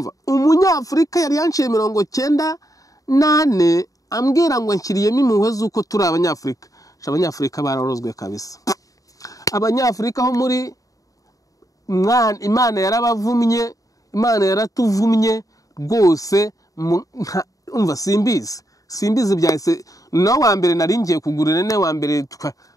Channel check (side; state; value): right; late; 0.17 ms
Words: umunyafurika yari yanciye 98 ambwira ngo nshyiriyemo impuhwe z'uko turi abanyafurika. Abanyafurika bararozwe kabisa. Abanyafurika ho muri Imana yarabavumye, Imana yaratuvumye rwose. Umva simbizi byahise no wa mbere nari ngiye kugurira ne wa mbere